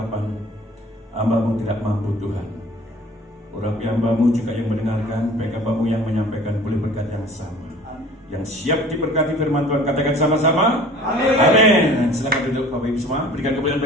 hamba-Mu tidak mampu Tuhan. Urapi hamba-Mu juga yang mendengarkan, baik hamba-Mu yang menyampaikan boleh berkat yang sama. Yang siap diberkati firman Tuhan, katakan sama-sama amin. Amin. Silakan duduk Bapak Ibu semua, berikan kemuliaan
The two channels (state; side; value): normal; both; correlation 0.47